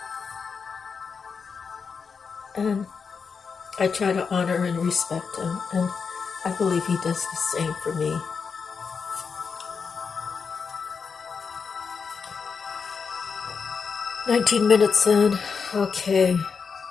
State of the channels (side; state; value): right; quieter; 5.7 dB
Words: And I try to honor and respect him, and I believe he does the same for me. "19 minutes in. Okay.